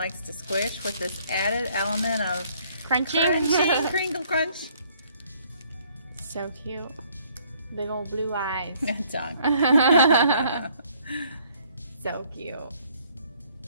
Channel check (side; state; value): both; inverted; correlation -0.63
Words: to squish with this added element of Crunching. crinkle crunch. So cute. Big old blue eyes. Tongue. So cute.